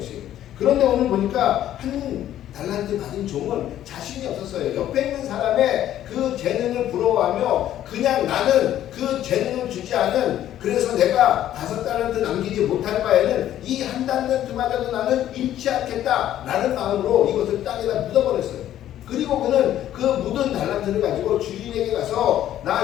그런데 오늘 보니까 한 달란트 받은 종은 자신이 없었어요. 옆에 있는 사람의 그 재능을 부러워하며 그냥 나는 그 재능을 주지 않은 그래서 내가 5달란트 남기지 못할 바에는 이 한 달란트마저도 나는 잃지 않겠다 라는 마음으로 이것을 땅에다 묻어버렸어요. 그리고 그는 그 묻은 달란트를 가지고 주인에게 가서 나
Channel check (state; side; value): quieter; right; 12.0 dB